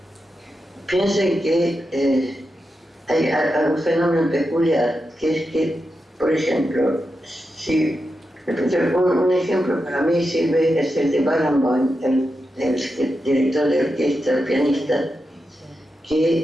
Piensen que hay algún fenómeno peculiar, que es que, por ejemplo, si un ejemplo para mí sirve es el de Barenboim, el director de orquesta, el pianista,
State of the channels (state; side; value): normal; both; correlation 0.88